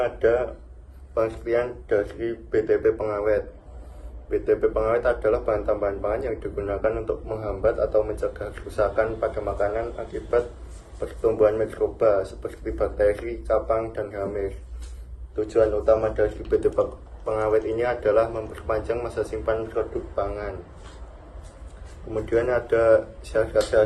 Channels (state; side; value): identical; both; correlation 1.00